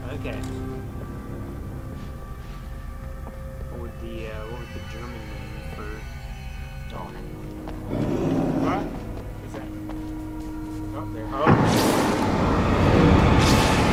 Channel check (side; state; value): both; identical; correlation 1.00